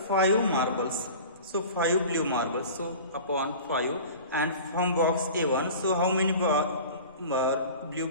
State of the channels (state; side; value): inverted; both; correlation -0.39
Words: 5 marbles. So 5 blue marbles. So upon 5 and from box A1. So how many blue